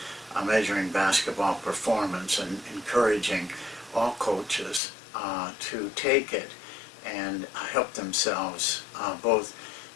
measuring basketball performance and encouraging all coaches to take it and help themselves both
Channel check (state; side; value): drops out; right; at 4.8 s